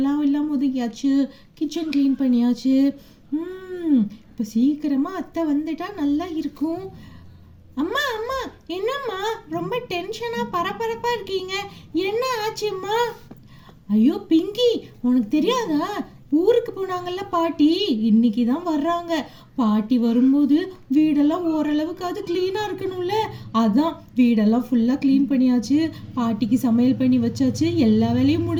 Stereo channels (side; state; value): both; identical; correlation 1.00